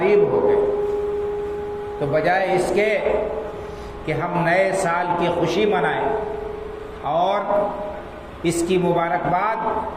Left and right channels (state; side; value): identical; both; correlation 1.00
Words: ہو گئے، تو بجائے اس کے کہ ہم نئے سال کی خوشی منائیں اور اس کی